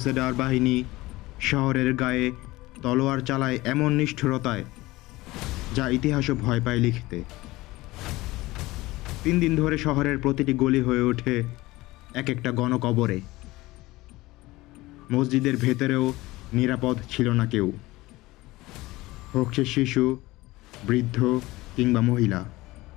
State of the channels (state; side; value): quieter; right; 19.5 dB